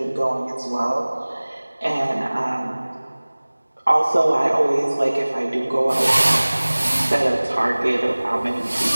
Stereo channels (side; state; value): both; inverted; correlation -1.00